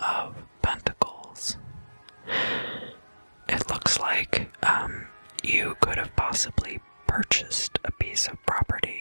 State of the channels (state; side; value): inverted; both; correlation -1.00